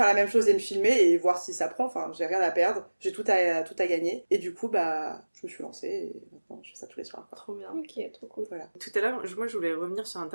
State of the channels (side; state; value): both; inverted; correlation -1.00